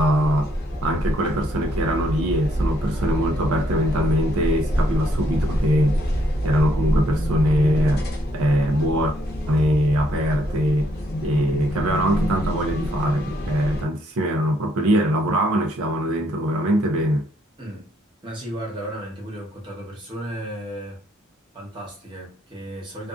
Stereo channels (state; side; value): normal; both; correlation 0.72